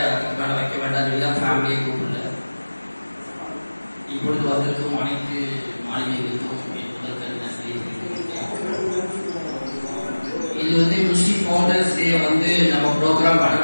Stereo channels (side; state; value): both; inverted; correlation -1.00